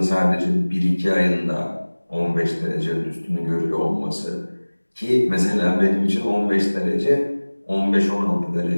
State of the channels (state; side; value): inverted; both; correlation -1.00